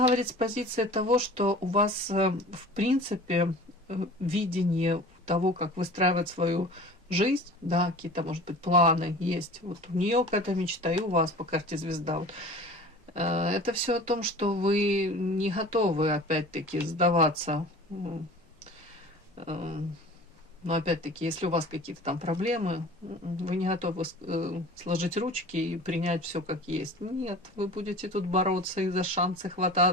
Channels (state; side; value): normal; both; correlation 0.40